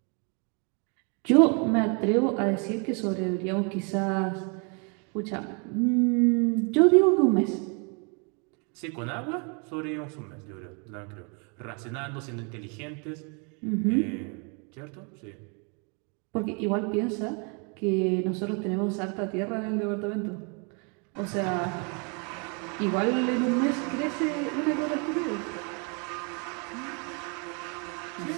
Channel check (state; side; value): quieter; left; 35.7 dB